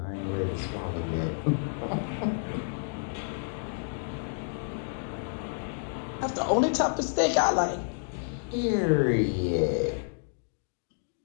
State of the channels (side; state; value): right; silent; digital silence